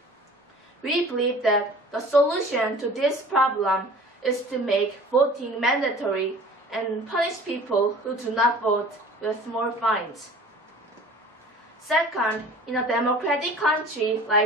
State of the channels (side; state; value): both; normal; correlation 0.45